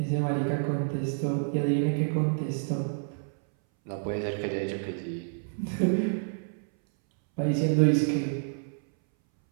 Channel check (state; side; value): silent; left; 59 dB below the other